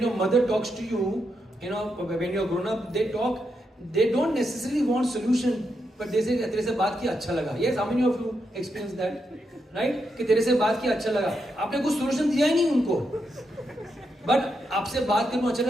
your mother talks to you, when you're grown up, they talk. They don't necessarily want solution, but they say, "तेरे से बात की अच्छा लगा." Yes, how many of you experienced that? Right? कि तेरे से बात की अच्छा लगा. आपने कुछ solution दिया ही नहीं उनको. But आपसे बात करना अच्छा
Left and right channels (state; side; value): normal; both; correlation 0.83